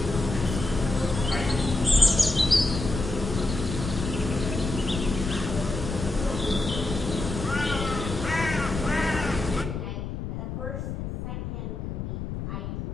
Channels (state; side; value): noise; left; rumble, 5 dB below the sound